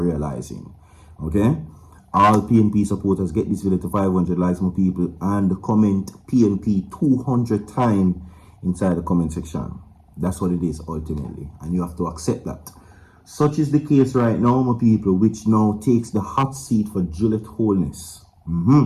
Okay? All PNP supporters get this video to 500 likes, my people, and comment PNP 200 times inside the comment section. That's what it is ultimately, and you have to accept that. Such is the case right now, my people, which now takes the hot seat for Juliet Holness.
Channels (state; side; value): identical; both; correlation 1.00